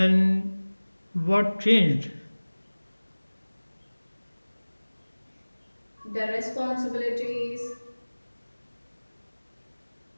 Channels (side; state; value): both; inverted; correlation -1.00